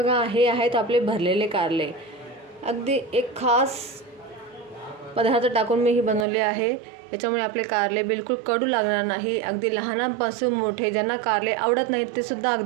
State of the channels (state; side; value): drops out; left; at 6.2 s